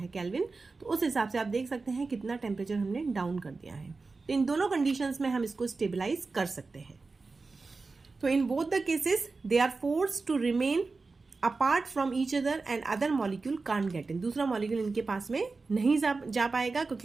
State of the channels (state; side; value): quieter; left; 4.0 dB